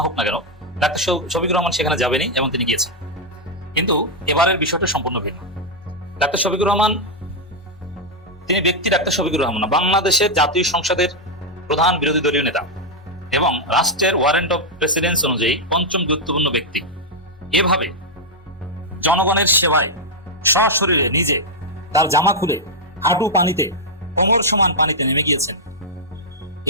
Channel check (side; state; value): both; normal; correlation -0.02